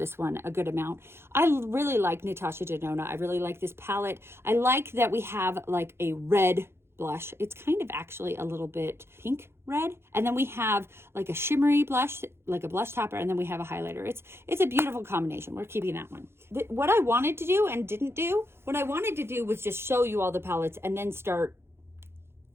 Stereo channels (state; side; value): late; left; 0.12 ms